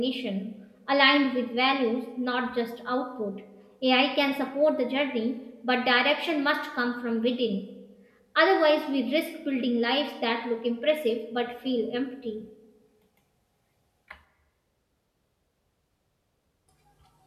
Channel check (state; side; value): identical; both; correlation 1.00